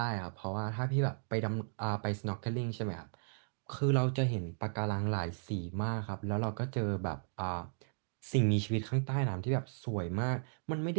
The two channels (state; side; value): silent; left; digital silence